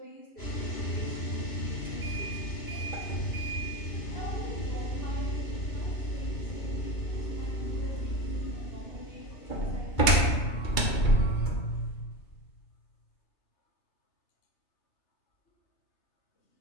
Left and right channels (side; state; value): right; late; 2.3 ms